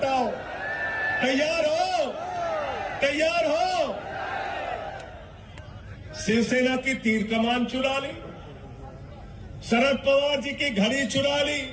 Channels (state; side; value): identical; both; correlation 1.00